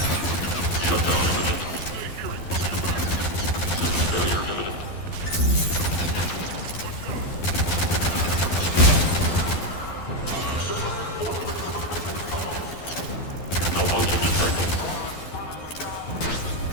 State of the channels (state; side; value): late; right; 12 ms